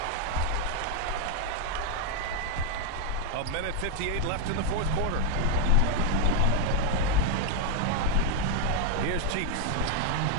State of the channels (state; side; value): different; both; correlation 0.01